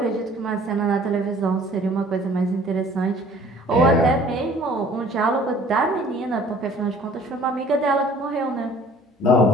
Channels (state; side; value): normal; both; correlation 0.52